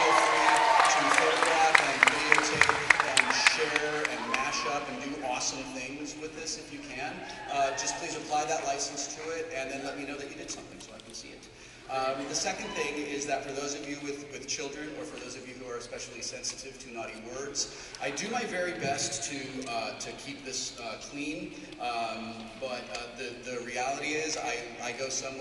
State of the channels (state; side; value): identical; both; correlation 1.00